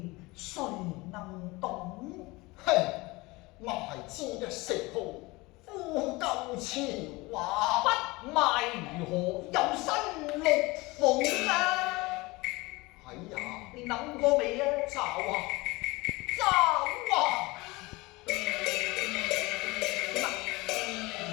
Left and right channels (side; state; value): right; quieter; 22.8 dB